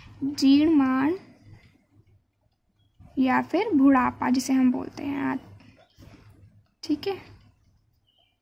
जीर्णमाण या फिर बुढ़ापा, जिसे हम बोलते हैं। ठीक है,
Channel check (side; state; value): both; identical; correlation 1.00